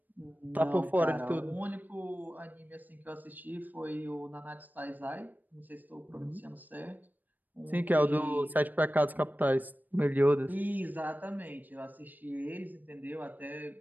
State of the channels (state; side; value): late; left; 0.086 ms